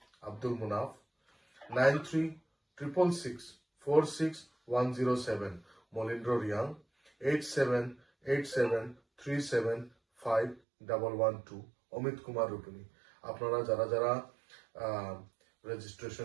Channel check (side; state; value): left; drops out; at 10.6 s